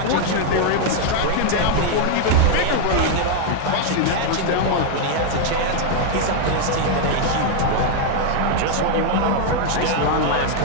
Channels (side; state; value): both; different; correlation 0.00